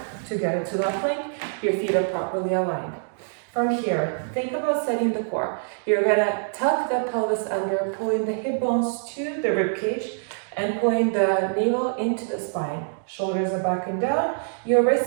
to get into that plank, your feet are properly aligned. From here, think about setting the core. You're gonna tuck the pelvis under, pulling the hip bones to the rib cage and pulling the navel into the spine. Shoulders are back and down. Your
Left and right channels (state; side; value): silent; left; digital silence